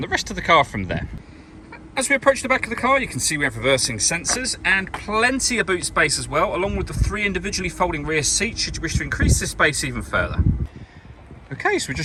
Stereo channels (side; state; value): both; identical; correlation 1.00